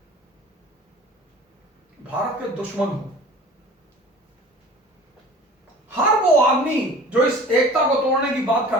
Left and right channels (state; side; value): normal; both; correlation 0.43